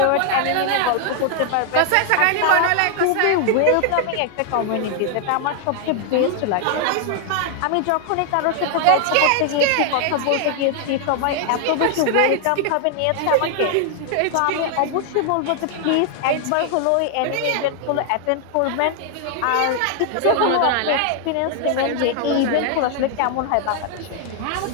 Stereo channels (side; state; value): both; different; correlation 0.00